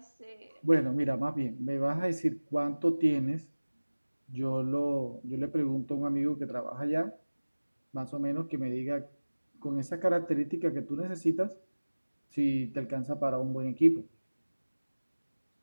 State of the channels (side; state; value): both; inverted; correlation -1.00